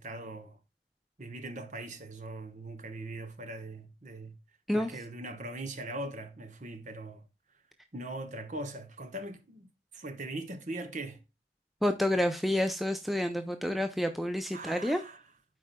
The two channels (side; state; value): both; normal; correlation 0.83